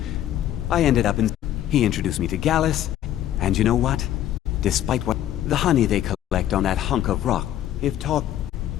I ended up in... He introduced me to Gallus. And you know what? Despite what... The honey they collect on that hunk of rock. If talk...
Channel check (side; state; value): right; quieter; 12.1 dB